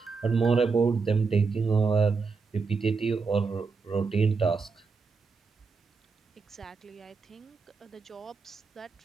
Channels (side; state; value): left; quieter; 4.7 dB